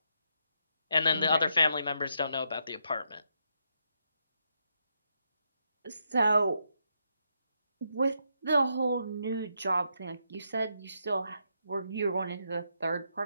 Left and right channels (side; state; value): both; inverted; correlation -0.79